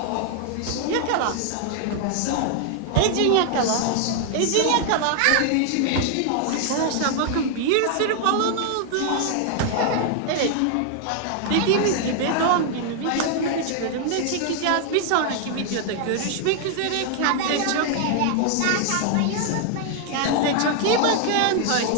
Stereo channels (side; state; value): both; different; correlation 0.00